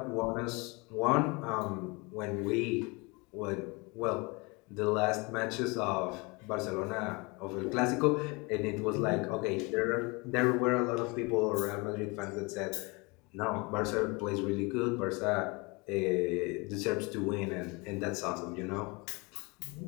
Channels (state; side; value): quieter; right; 27.6 dB